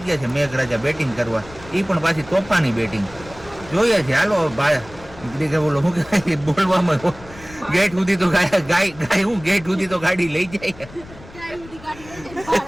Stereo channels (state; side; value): noise; left; rumble, 19 dB below the sound